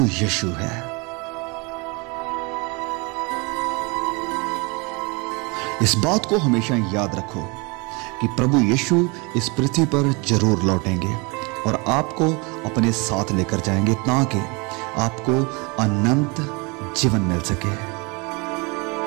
यीशु है। इस बात को हमेशा याद रखो कि प्रभु यीशु इस पृथ्वी पर जरूर लौटेंगे और आपको अपने साथ लेकर जाएंगे, ताकि आपको अनंत जीवन मिल सके।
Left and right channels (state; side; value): quieter; left; 29.0 dB